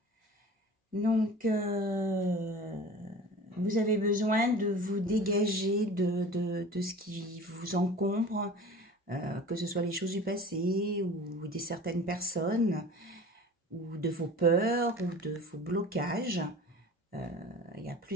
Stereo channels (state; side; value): normal; both; correlation 0.40